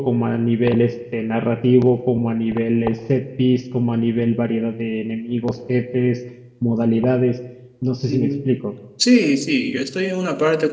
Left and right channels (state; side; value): identical; both; correlation 1.00